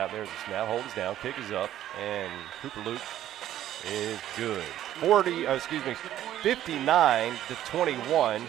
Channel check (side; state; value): left; quieter; 12.2 dB